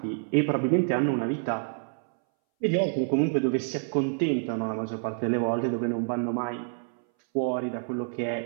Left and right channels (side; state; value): left; silent; 59 dB below the other